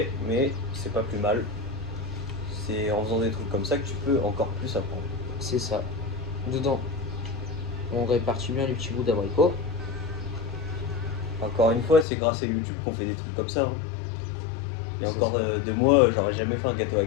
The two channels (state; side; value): drops out; right; at 12.1 s